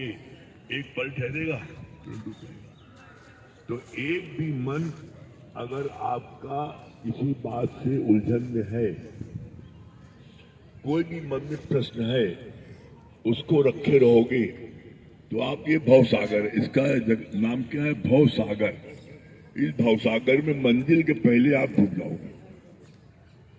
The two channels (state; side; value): identical; both; correlation 1.00